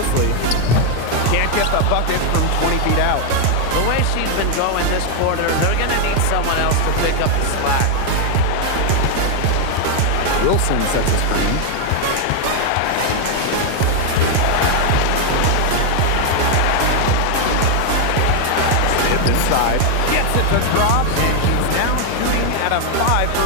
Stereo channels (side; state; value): both; different; correlation 0.01